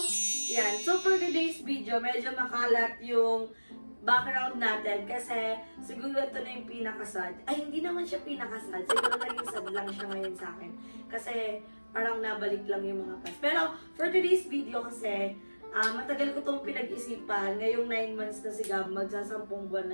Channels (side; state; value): both; inverted; correlation -1.00